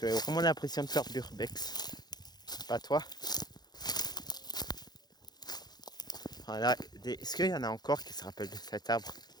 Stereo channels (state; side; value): late; right; 0.20 ms